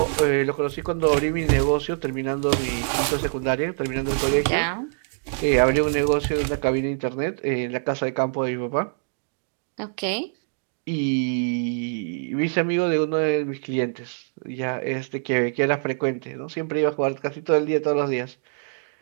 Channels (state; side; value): silent; left; digital silence